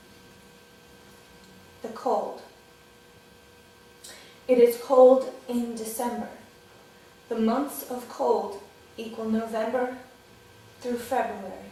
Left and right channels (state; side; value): identical; both; correlation 1.00